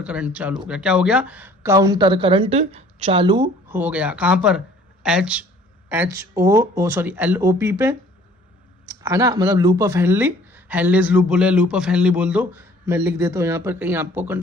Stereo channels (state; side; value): normal; both; correlation 0.54